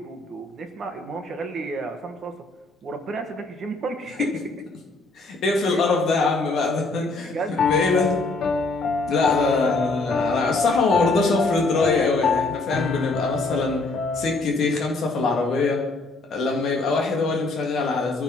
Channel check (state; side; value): quieter; right; 3.3 dB